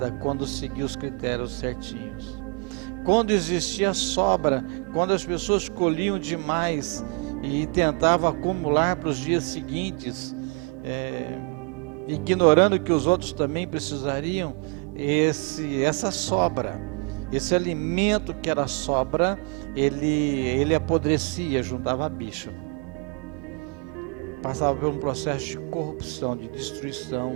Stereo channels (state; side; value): quieter; left; 33.0 dB